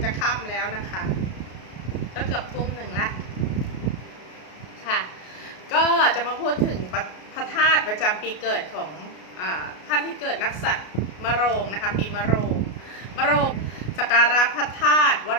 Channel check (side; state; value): right; late; 33 ms